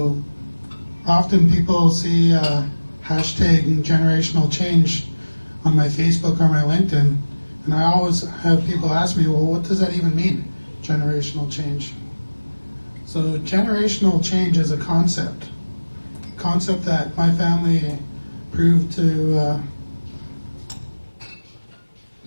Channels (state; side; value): inverted; both; correlation -1.00